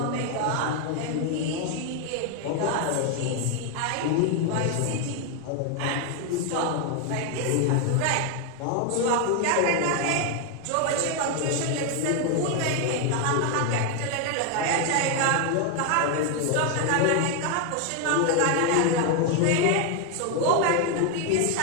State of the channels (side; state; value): both; different; correlation 0.01